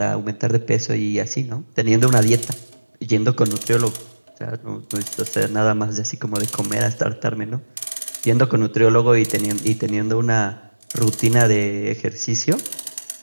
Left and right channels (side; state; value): both; inverted; correlation -1.00